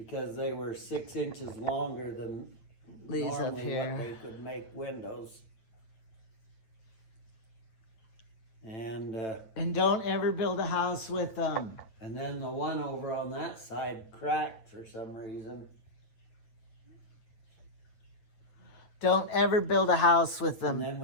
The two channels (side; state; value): right; late; 9.1 ms